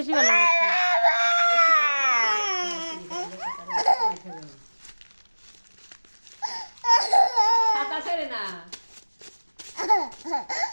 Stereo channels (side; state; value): both; inverted; correlation -1.00